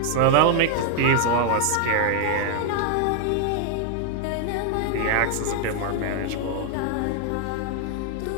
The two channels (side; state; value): both; different; correlation 0.00